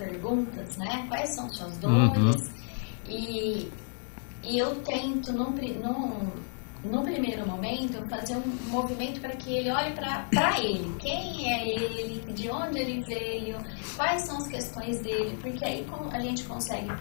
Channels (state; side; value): silent; right; 57 dB below the other